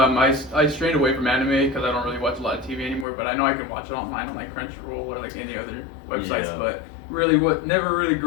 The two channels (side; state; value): right; drops out; at 3.1 s